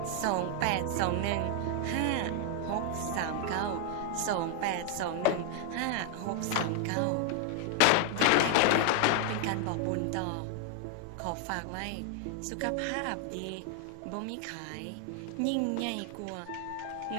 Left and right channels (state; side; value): different; both; correlation 0.00